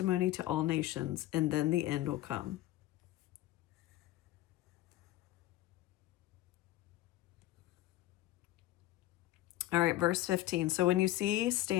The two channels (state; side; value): quieter; right; 15.8 dB